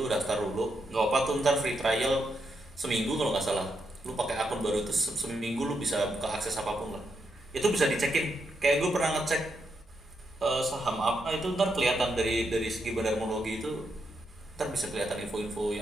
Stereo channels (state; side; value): normal; both; correlation 0.82